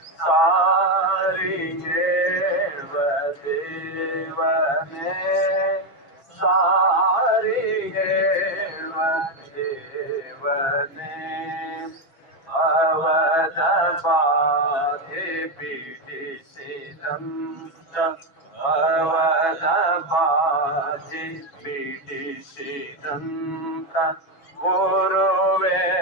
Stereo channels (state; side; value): late; right; 6.1 ms